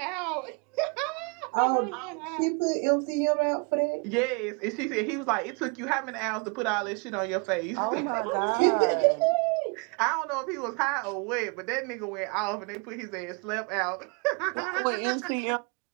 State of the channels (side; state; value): left; quieter; 32.5 dB